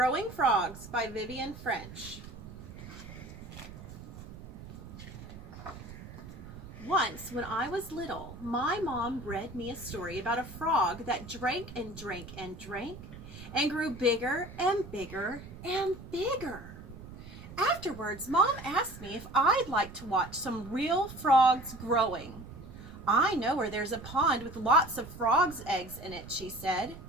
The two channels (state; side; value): noise; right; rumble, 14 dB below the sound